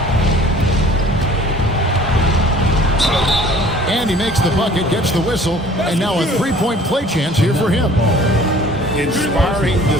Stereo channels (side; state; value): both; normal; correlation 0.51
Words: And he makes the bucket, gets the whistle, and now a three-point play chance here for him. Inspiring